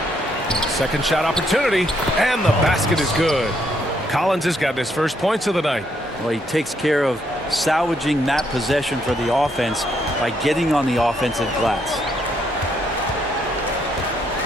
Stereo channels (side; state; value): both; normal; correlation 0.73